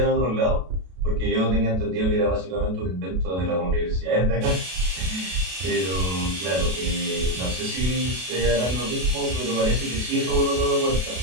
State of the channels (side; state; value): left; late; 32 ms